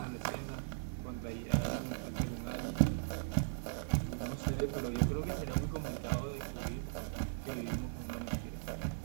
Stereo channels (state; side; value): silent; left; 52 dB below the other